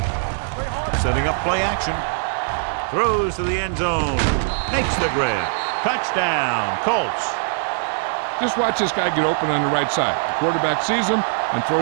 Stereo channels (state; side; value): silent; left; 58 dB below the other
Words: Setting up play action. Throws to the end zone. Makes the grab. Touchdown, Colts. Just watch this guy get open on the right side. The quarterback sees him and